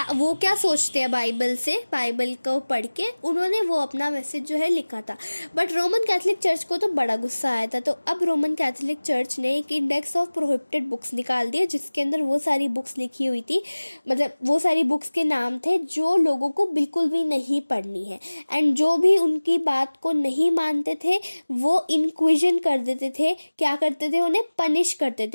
सोचते हैं बाइबल से, बाइबल को पढ़ के उन्होंने वो अपना मैसेज जो है लिखा था। बट रोमन कैथोलिक चर्च को तो बड़ा गुस्सा आया था। तो अब रोमन कैथोलिक चर्च ने एक इंडेक्स ऑफ प्रोहिबिटेड बुक्स निकाल दिया जिसके अंदर वो सारी बुक्स लिखी हुई थी, मतलब वो सारी बुक्स के नाम थे जो लोगों को बिल्कुल भी नहीं पढ़नी है एंड जो भी उनकी बात को नहीं मानते थे वो इंक्विजन कर देते थे। क्या करते थे, उन्हें पनिश करते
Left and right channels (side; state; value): both; inverted; correlation -1.00